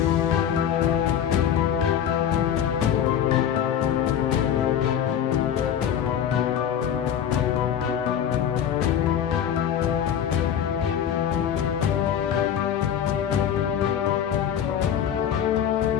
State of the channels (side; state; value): right; quieter; 9.2 dB